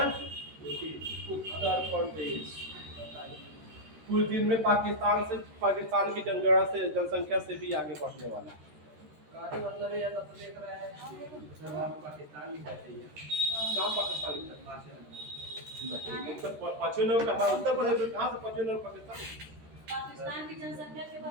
उत्तर प्रदेश। कुछ दिन में पाकिस्तान की जनगणना से, जनसंख्या से भी आगे बढ़ने वाला। मतलब ये तो देख रहा है पाकिस्तान ही कहते हैं, पाकिस्तान तो 5वें नंबर का हमारा उत्तर प्रदेश, कहाँ से 5वें नंबर पाकिस्तान की जनसंख्या के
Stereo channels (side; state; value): left; late; 13 ms